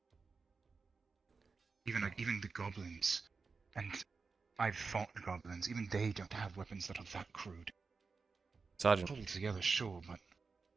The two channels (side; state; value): left; quieter; 4.7 dB